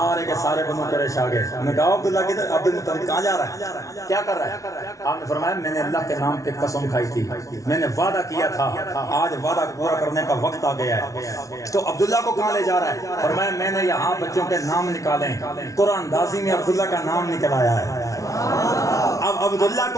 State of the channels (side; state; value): right; late; 0.16 ms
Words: کے سارے بنو قریش آ گئے۔ انہوں نے کہا عبداللہ کی طرف، عبد المطلب کہاں جا رہا ہے، کیا کر رہا ہے؟ آپ نے فرمایا میں نے اللہ کے نام پہ قسم کھائی تھی، میں نے وعدہ کیا تھا، آج وعدہ پورا کرنے کا وقت آ گیا ہے۔ تو عبداللہ کو کہاں لے جا رہا ہے؟ فرمایا میں نے یہاں بچوں کے نام نکالیں، قرآن اندازی میں عبداللہ کا نام نکل آیا ہے۔ اب عبداللہ